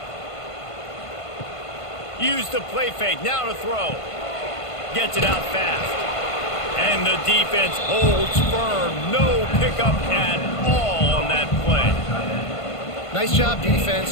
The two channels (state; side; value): late; right; 1.5 ms